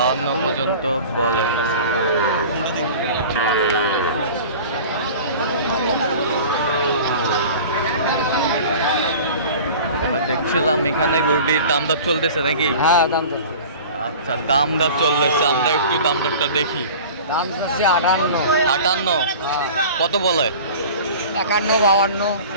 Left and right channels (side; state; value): both; inverted; correlation -0.39